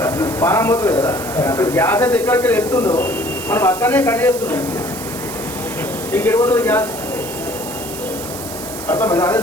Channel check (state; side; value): noise; right; hiss, 10 dB below the sound